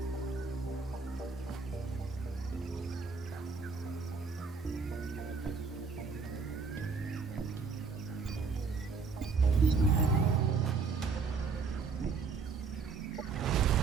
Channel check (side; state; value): left; quieter; 4.8 dB